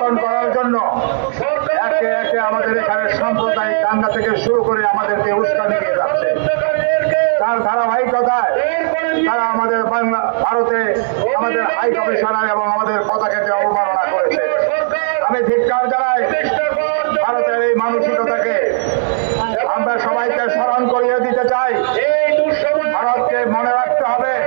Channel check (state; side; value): silent; left; digital silence